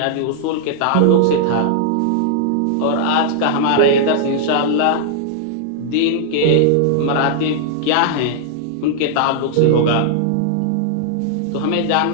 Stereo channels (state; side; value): different; both; correlation -0.01